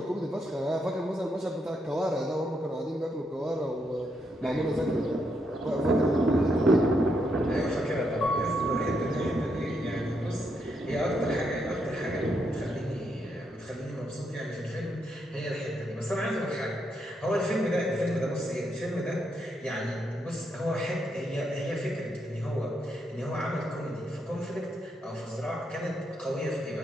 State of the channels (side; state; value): both; normal; correlation 0.79